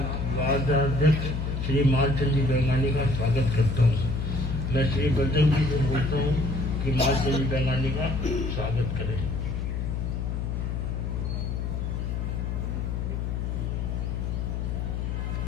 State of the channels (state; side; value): noise; left; hum, 2 dB below the sound